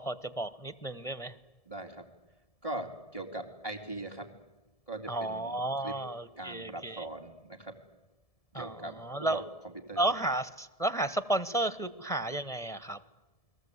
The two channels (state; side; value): late; right; 1.7 ms